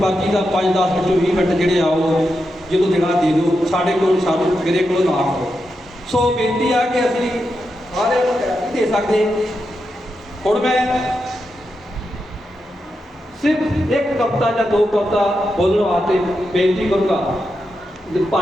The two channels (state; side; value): normal; both; correlation 0.87